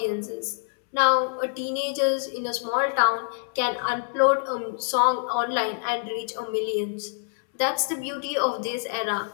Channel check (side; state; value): right; silent; 61 dB below the other